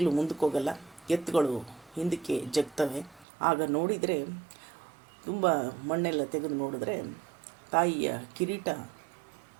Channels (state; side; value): drops out; left; at 3.2 s